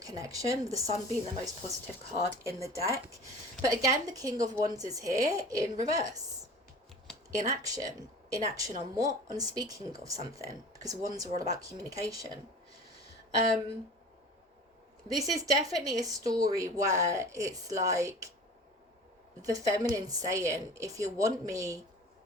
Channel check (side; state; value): both; normal; correlation 0.41